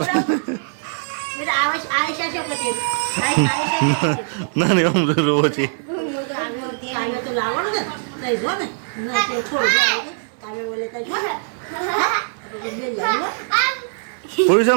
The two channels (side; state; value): left; silent; 65 dB below the other